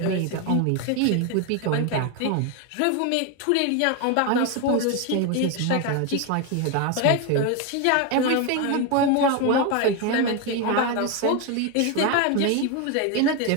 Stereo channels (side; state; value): both; different; correlation 0.02